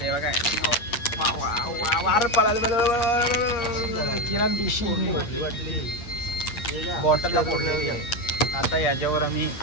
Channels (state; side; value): late; right; 8.5 ms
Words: बघा वार पडाल किरण पिशी बॉटल आता याच्यावर आम्ही